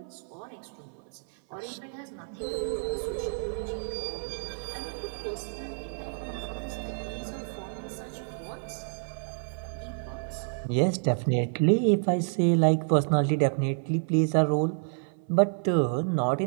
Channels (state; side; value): silent; left; 57 dB below the other